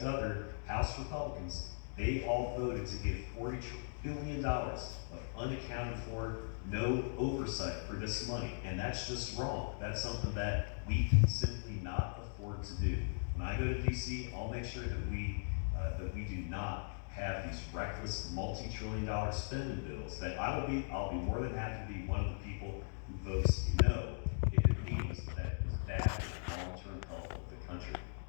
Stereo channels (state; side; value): silent; right; digital silence